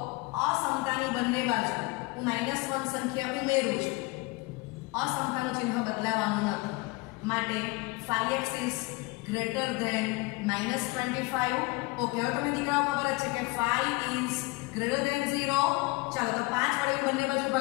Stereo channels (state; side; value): quieter; right; 24.2 dB